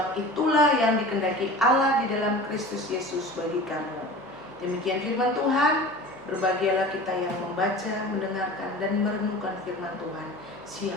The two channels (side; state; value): both; normal; correlation 0.38